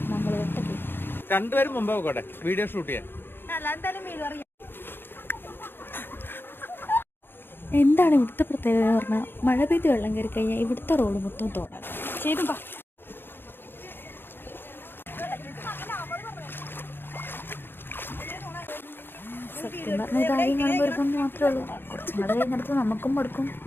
നമ്മൾ വെട്ടത്തിൽ രണ്ടുപേരും മുമ്പ് പോകട്ടെ വീഡിയോ ഷൂട്ട് ചെയ്യാൻ. എന്താണ് ഇവിടുത്തെ പ്രത്യേകത എന്ന് പറഞ്ഞാൽ മഴ പെയ്ത് വെള്ളം കയറി കഴിഞ്ഞാൽ ഇവിടുത്തെ റോഡ് മൊത്തം തോടാണ്. ചെയ്തുമ്പോ സത്യം പറഞ്ഞ കാര്യം കാണുമ്പോൾ ഒരു കൊണ്ട് മാത്രമേ ഉള്ളൂ. കുറച്ചും കൂടെ കഴിഞ്ഞിടത്ത് നമുക്കും മടുക്കും.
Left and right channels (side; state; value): right; late; 0.10 ms